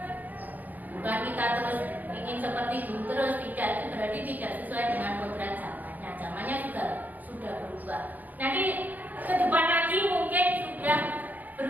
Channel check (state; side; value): late; left; 0.082 ms